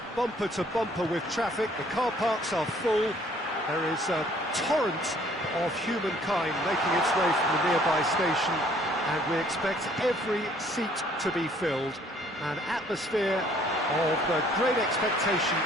bumper to bumper with traffic. The car parks are full. There is a torrent of humankind making its way from the nearby station, and we expect every seat to be filled. An atmosphere of great expectation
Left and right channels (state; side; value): normal; both; correlation 0.60